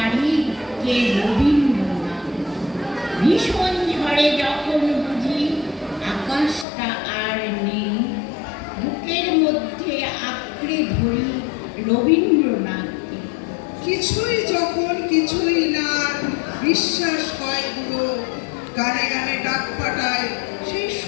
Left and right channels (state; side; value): drops out; right; at 6.7 s